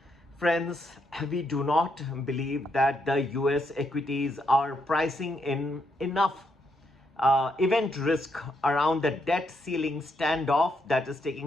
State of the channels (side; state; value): both; normal; correlation 0.78